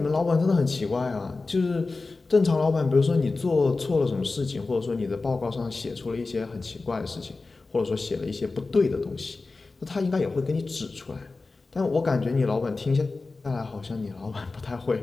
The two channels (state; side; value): quieter; right; 3.7 dB